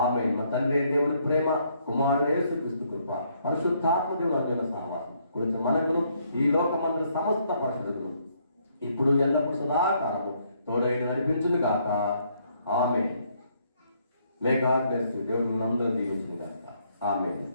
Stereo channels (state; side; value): inverted; both; correlation -0.70